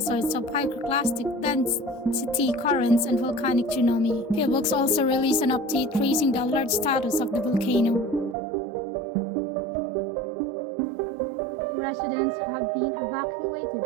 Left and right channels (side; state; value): left; drops out; at 8.3 s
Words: of pyroclastic density currents and volcanic tsunami. Fieldbooks also released an update raising the alert status of the volcano. Residents have been evacuated